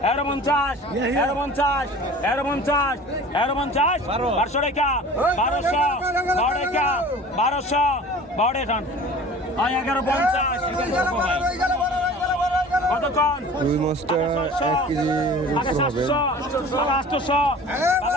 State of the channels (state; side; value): normal; both; correlation 0.42